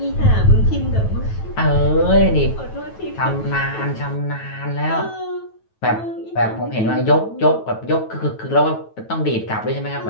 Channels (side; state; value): right; late; 9.2 ms